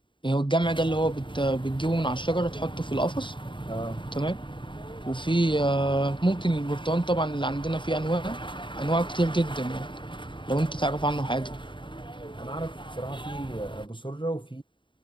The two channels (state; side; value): late; right; 0.23 ms